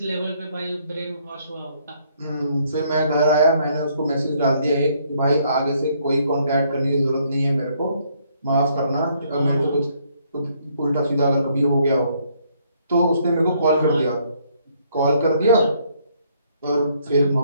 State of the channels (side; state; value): both; inverted; correlation -0.68